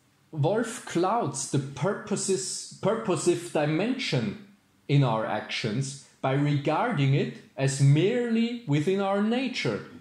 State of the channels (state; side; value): identical; both; correlation 1.00